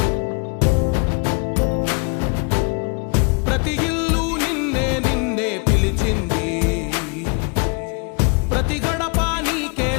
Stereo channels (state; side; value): quieter; right; 33.2 dB